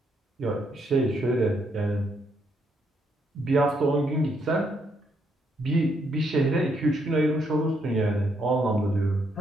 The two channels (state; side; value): normal; both; correlation 0.75